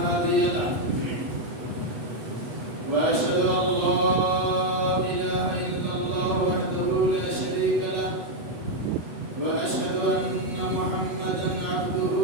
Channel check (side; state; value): left; late; 8.1 ms